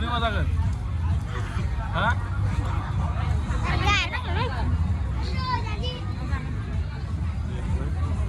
मा जागोन हा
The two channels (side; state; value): both; identical; correlation 1.00